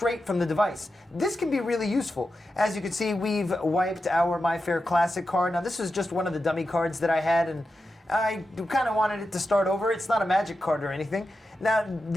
from the device. This can be really useful. As you can see, we've wiped our MyFair Classic card. Now this was just one of the dummy cards that I had, and I kind of wanted it to start over. It's not a magic card or anything. Now,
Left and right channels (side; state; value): both; normal; correlation 0.90